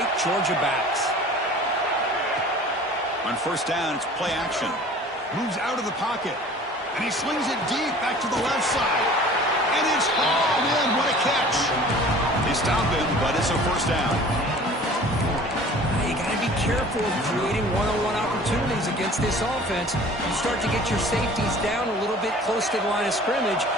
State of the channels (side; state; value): both; normal; correlation 0.46